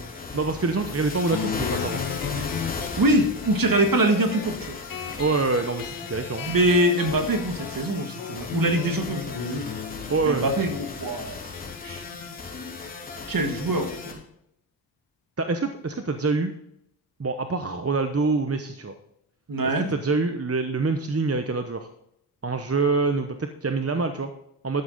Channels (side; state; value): both; normal; correlation 0.12